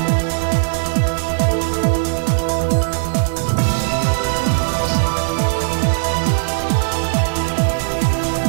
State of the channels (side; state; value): left; silent; 65 dB below the other